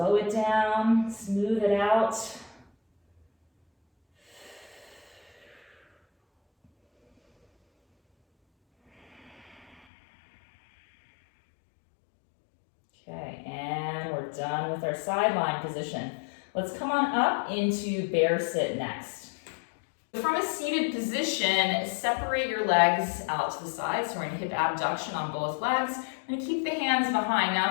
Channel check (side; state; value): right; drops out; at 9.8 s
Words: it down. Smooth it out. Okay, and we're done with our sideline position. Let's come on up into bear sit next. From a seated position, separate your legs out to the side. So we're in hip abduction on both legs. We're going to keep the hands behind.